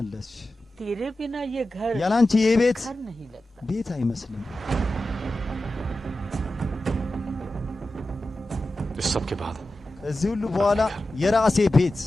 तेरे बिना ये घर ያለ አንቺ ይህ ቤት घर नहीं लगता। ቤት አይመስልም። इस सब के बाद ከዚህ ሁሉ በኋላ የራሴ ቤት።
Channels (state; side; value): normal; both; correlation 0.93